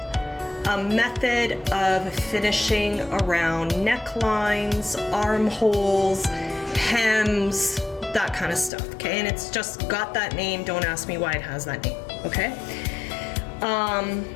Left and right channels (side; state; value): right; drops out; at 8.7 s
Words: a method of finishing around necklines, armholes, hems, that kind of stuff, okay? And it's just got that name. Don't ask me why it has that name, okay?